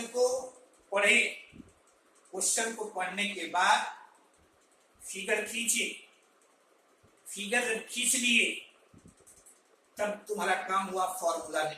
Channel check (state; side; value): identical; both; correlation 1.00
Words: को पढ़े, क्वेश्चन को पढ़ने के बाद फिगर खींचे, फिगर जब खींच लिए तब तुम्हारा काम हुआ फॉर्मूला